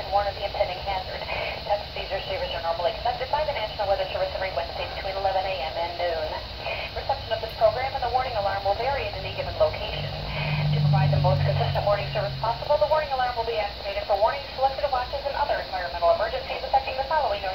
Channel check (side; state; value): both; identical; correlation 1.00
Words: warn of the impending hazard. Tests of these receivers are normally conducted by the National Weather Service every Wednesday between 11 a.m. and noon. Reception of this program and the warning alarm will vary at any given location. To provide the most consistent warning service possible, the warning alarm will be activated for warnings, selected watches, and other environmental emergencies affecting the following